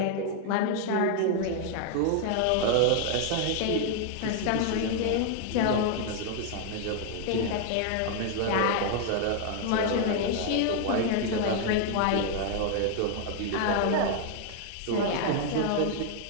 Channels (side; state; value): both; different; correlation 0.00